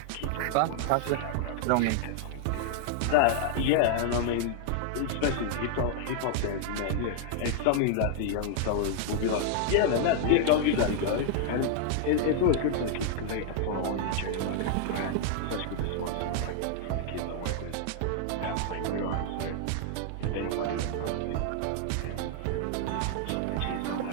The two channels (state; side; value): different; both; correlation -0.01